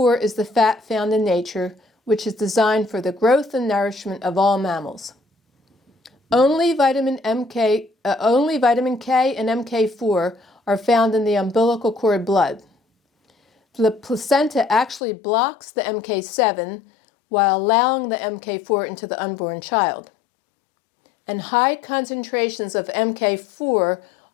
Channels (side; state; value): right; drops out; at 15.0 s